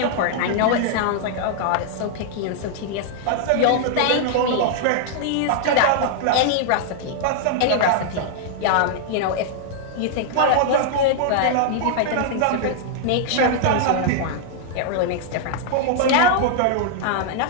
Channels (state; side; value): different; both; correlation -0.01